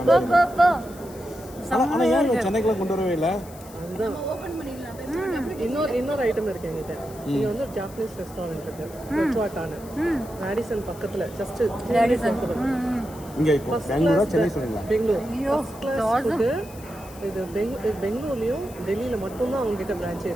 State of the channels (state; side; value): noise; left; hiss, 20 dB below the sound